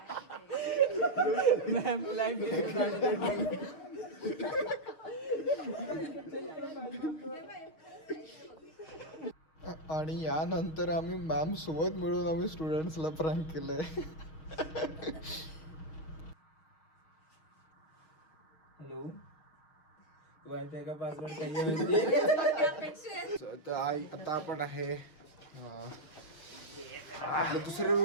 आणि यानंतर आम्ही मॅम सोबत मिळून आम्ही स्टुडंट्सला प्रँक केलंय. हॅलो, माहिती आहे का पासवर्ड काही आता आपण आहे आपल्या दुसऱ्या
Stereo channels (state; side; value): late; right; 6.3 ms